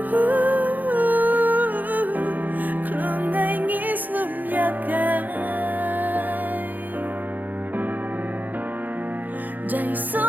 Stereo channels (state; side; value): late; left; 0.084 ms